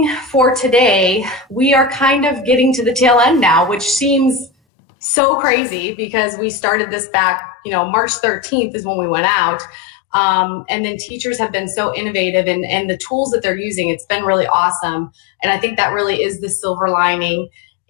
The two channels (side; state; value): right; drops out; at 4.5 s